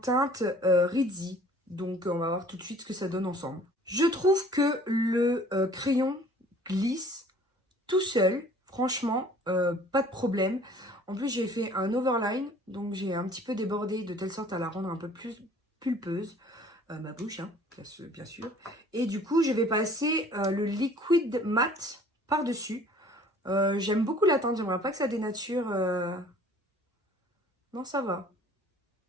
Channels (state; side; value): normal; both; correlation 0.52